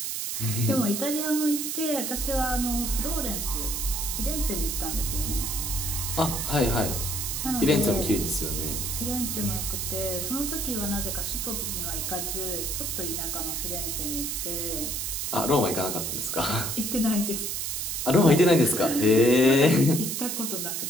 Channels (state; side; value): noise; right; hiss, 2 dB below the sound